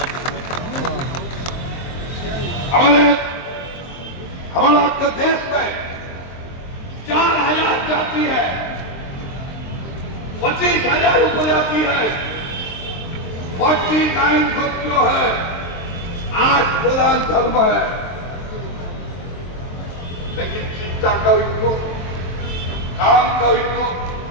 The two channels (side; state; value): right; late; 23 ms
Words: हमारा आपका देश में 4000 जाति है, 25,000 उपजाति है, 49 ग्रुप जो है, 8 प्रधान धर्म है। लेकिन चिंता का उनको, काम का उनको,